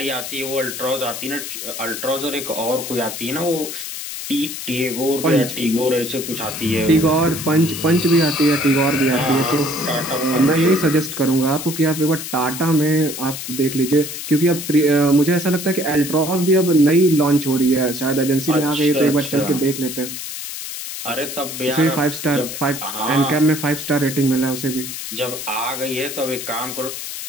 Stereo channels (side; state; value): left; noise; hiss, 8 dB below the sound